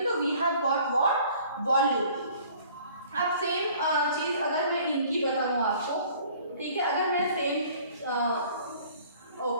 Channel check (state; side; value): inverted; both; correlation -0.53